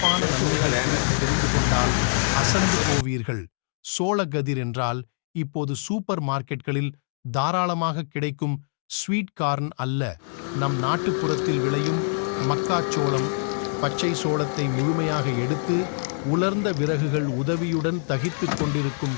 நன்மைகளை தெரிந்து கொண்டால் அசந்து போவீர்கள். சோளக்கதிர் என்றால் இப்போது சூப்பர் மார்க்கெட்களில் தாராளமாக கிடைக்கும் ஸ்வீட் கார்ன் அல்ல, நம் நாட்டுப்புறத்தில் விளையும் மக்காச்சோளம். பச்சை சோளத்தை முழுமையாக எடுத்து உலர்ந்த விறகுகள் உதவியுடன் தகித்துக்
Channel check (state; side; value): silent; right; digital silence